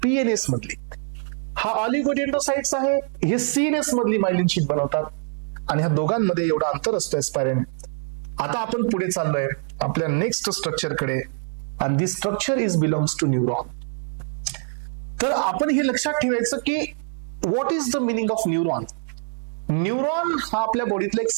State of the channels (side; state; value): left; silent; 60 dB below the other